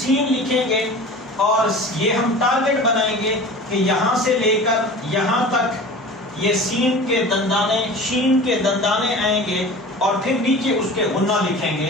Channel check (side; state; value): both; normal; correlation 0.37